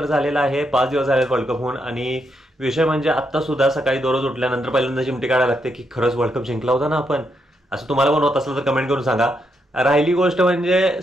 झालेला आहे, 5 दिवस झाले वर्ल्ड कप होऊन। आणि विषय म्हणजे आत्ता सुद्धा सकाळी दररोज उठल्यानंतर पहिल्यांदा चिमटी काढायला लागते की खरंच वर्ल्ड कप जिंकला होता ना आपण। असं तुम्हाला पण होत असलं तर कमेंट करून सांगा। राहिली गोष्ट म्हणजे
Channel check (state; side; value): normal; both; correlation 0.80